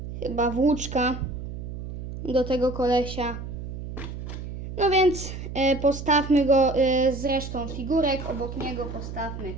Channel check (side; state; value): right; noise; hum, 8 dB below the sound